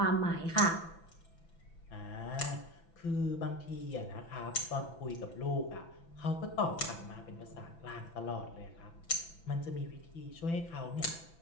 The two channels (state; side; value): late; right; 6.0 ms